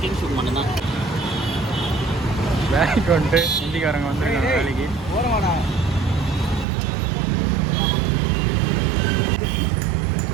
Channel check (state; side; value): drops out; left; at 6.7 s